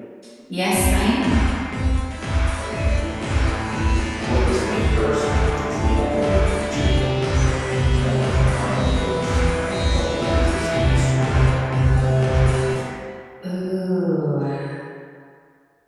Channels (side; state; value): both; identical; correlation 1.00